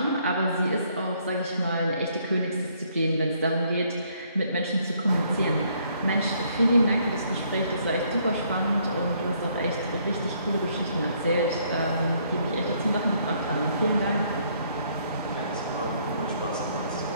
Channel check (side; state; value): both; inverted; correlation -0.67